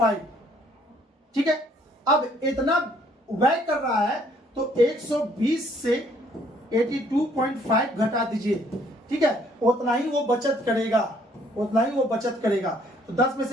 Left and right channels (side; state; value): both; normal; correlation 0.63